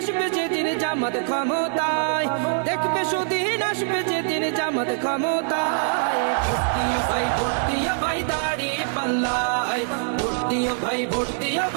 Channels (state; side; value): silent; left; digital silence